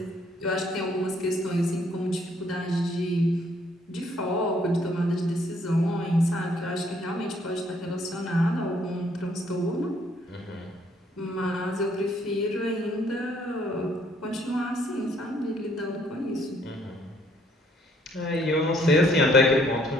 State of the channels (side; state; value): both; normal; correlation 0.66